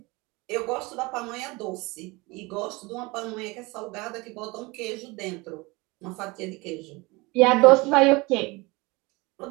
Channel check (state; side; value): quieter; left; 24.3 dB